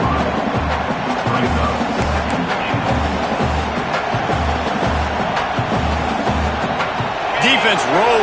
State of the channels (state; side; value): identical; both; correlation 1.00